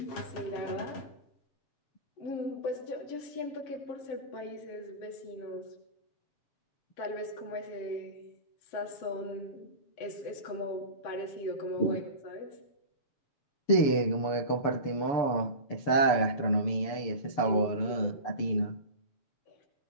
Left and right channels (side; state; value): right; late; 6.9 ms